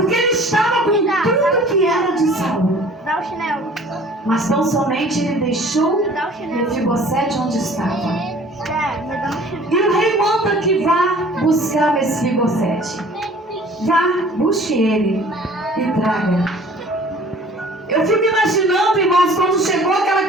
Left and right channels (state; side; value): normal; both; correlation 0.50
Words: ele estava com tudo que era de Saul. Mas tão somente ele deixou Mefibosete onde estava. E o rei manda que vá buscar Mefibosete. Vá, busque ele e traga. Eu fico imaginando, irmãos, quando chegou aquela